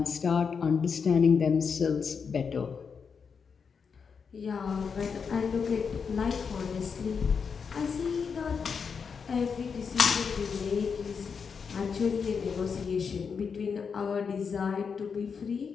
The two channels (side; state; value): right; quieter; 6.0 dB